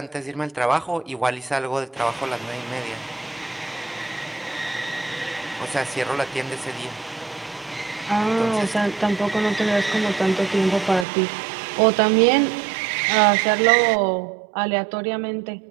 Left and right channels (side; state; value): left; drops out; at 11.1 s